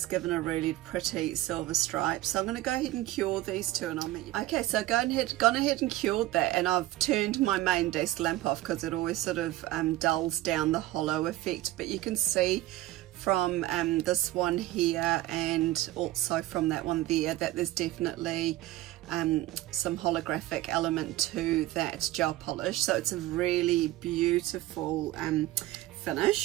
given a really pretty silver stripe. So I'm going to go ahead and cure these 2 and I'll meet you. Okay, so gone ahead and cured that, and I've turned my main desk lamp off because it always sort of dulls down the hollow effect. But you can see from this one here and also from that one there that there's definitely some holographic element to that gel polish. So it's a really beautiful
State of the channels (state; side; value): quieter; left; 16.2 dB